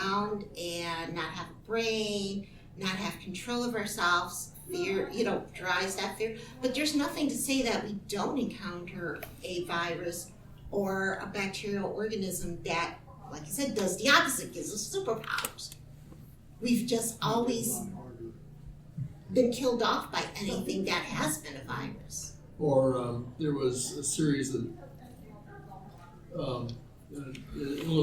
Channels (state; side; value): identical; both; correlation 1.00